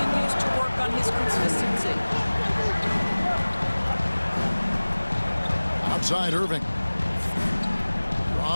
to work on his consistency. Outside Irving.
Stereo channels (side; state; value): both; inverted; correlation -1.00